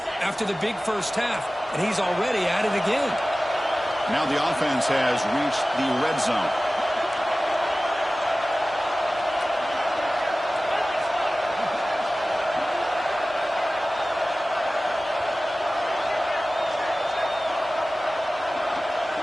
after the big first half, and he's already at it again. Now the offense has reached the red zone.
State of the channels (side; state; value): both; normal; correlation 0.97